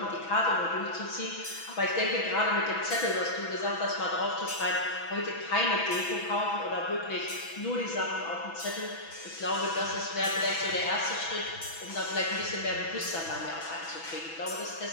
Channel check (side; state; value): right; late; 6.1 ms